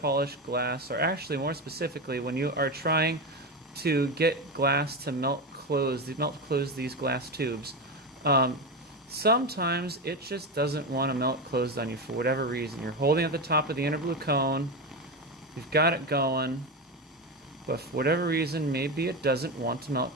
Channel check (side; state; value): both; normal; correlation 0.16